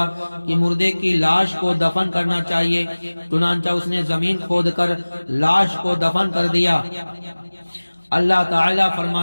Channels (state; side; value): inverted; both; correlation -1.00